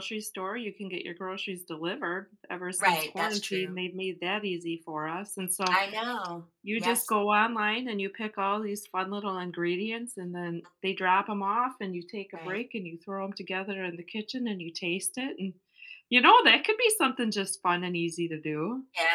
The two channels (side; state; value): both; identical; correlation 1.00